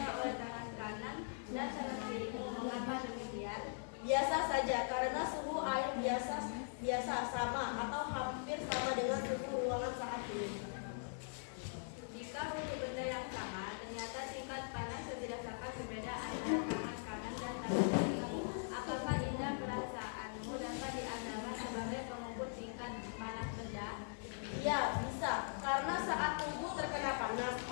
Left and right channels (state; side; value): silent; right; digital silence